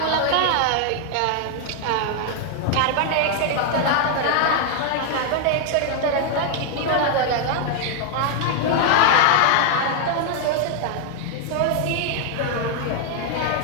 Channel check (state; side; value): different; both; correlation 0.00